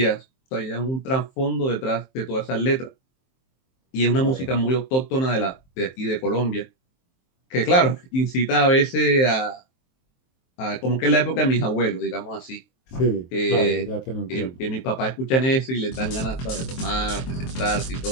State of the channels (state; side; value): late; right; 23 ms